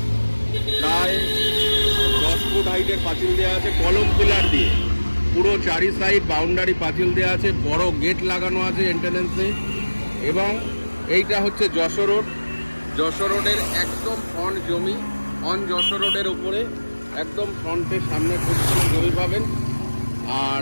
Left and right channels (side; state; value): both; inverted; correlation -1.00